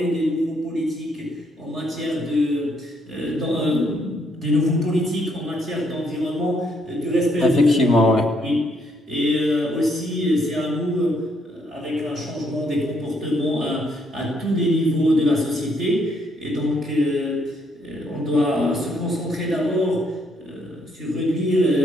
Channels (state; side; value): normal; both; correlation 0.72